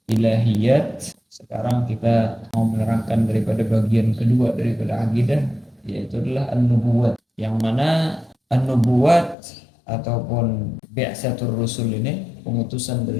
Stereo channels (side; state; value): right; drops out; at 9.3 s